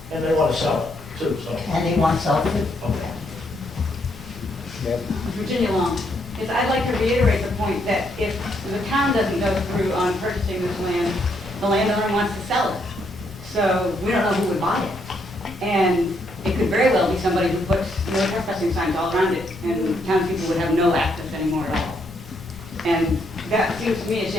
And they want to sell it too, so. And they want to sell it too. Okay. Virginia Long, is I'd like to reiterate the point that if the town doesn't go through on purchasing this land, the landowner wants to sell it. So we don't know who would buy it. And it could very well be somebody who puts no trespassing signs all around it, and townspeople would have no access anymore at all. And that seems to me a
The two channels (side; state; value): left; noise; rumble, 18 dB below the sound